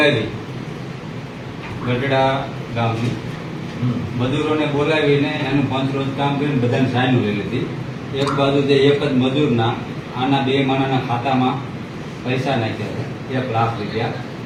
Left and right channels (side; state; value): both; identical; correlation 1.00